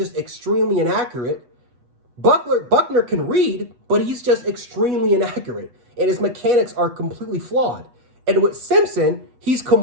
extremely inaccurate. Buckner can read, but he's just extremely inaccurate. And his mechanics are completely flawed. And with Simpson, he's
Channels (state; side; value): late; left; 8.2 ms